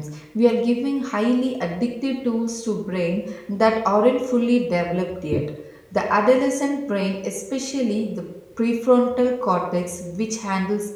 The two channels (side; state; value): both; identical; correlation 1.00